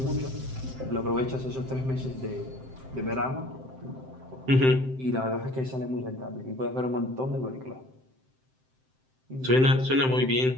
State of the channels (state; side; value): late; left; 7.7 ms